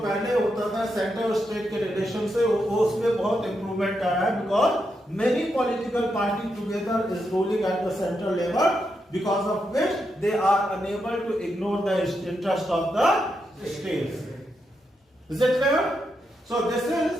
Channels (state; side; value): normal; both; correlation 0.83